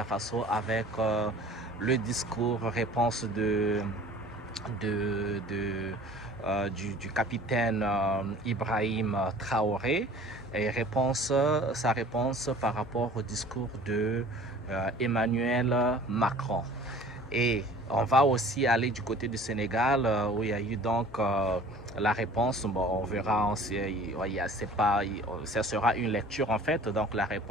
Faso avec le discours réponse du capitaine Ibrahim Traoré et sa réponse par rapport au discours de Emmanuel Macron. Et on va aussi aller du côté du Sénégal où il y a eu donc la réponse. Bon, on verra, ça sera une lecture en fait, donc la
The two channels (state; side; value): normal; both; correlation 0.47